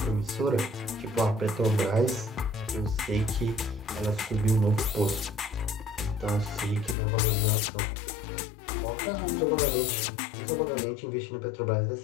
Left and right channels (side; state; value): right; drops out; at 7.0 s